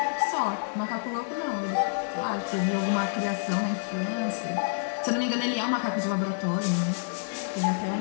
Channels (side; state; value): right; silent; digital silence